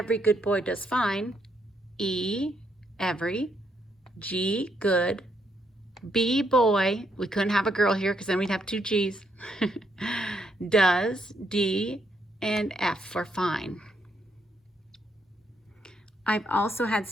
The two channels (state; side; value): normal; both; correlation 0.76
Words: good boy does fine, E, every, G, good, B, boy, we couldn't have a girl here because then we'd have 2 G's, does, D, and F for fine. I've also had